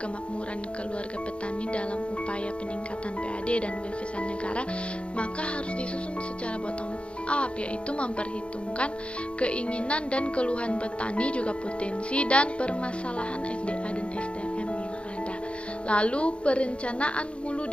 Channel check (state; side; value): late; right; 0.059 ms